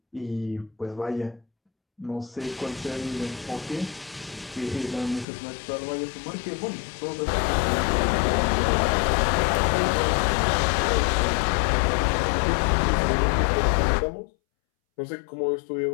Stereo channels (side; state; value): right; drops out; at 5.2 s